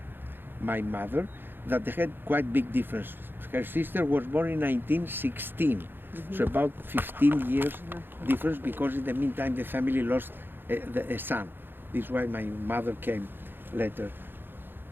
my mother, that they had quite big difference. Her sister was born in 1916, so about 15 years difference, because in the meantime the family lost a son. This is why my mother came later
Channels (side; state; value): left; late; 0.10 ms